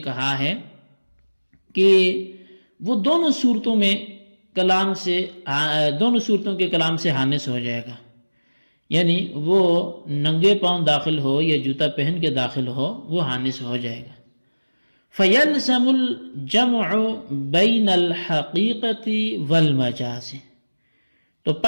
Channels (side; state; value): both; inverted; correlation -1.00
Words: کہا ہے کہ وہ دونوں صورتوں کے کلام سے حانث ہو جائے گا، یعنی وہ ننگے پاؤں داخل ہو یا جوتا پہن کے داخل ہو وہ حانث ہو جائے گا۔ فَيَلْزَمُ الْجَمْعُ بَيْنَ الْحَقِيقَةِ وَالْمَجَازِ، تو